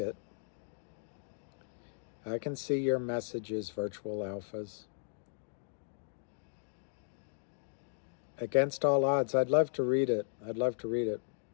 I can see your messages, virtual alphas. Against All Odds. I'd love to read it.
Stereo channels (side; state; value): right; silent; digital silence